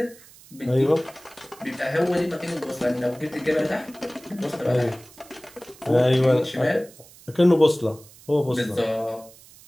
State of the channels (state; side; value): noise; right; hiss, 23 dB below the sound